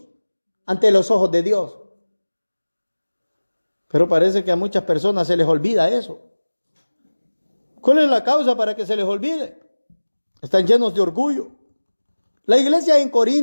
ante los ojos de Dios. Pero parece que a muchas personas se les olvida eso. ¿Cuál es la causa para que se les olvide? Están llenos de orgullo. La iglesia en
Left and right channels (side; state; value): both; inverted; correlation -1.00